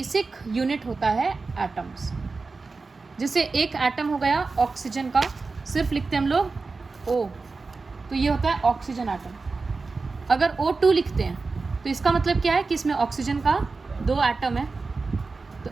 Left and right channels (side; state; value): left; quieter; 4.0 dB